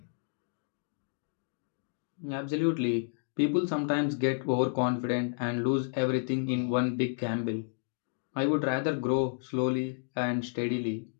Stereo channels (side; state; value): right; silent; digital silence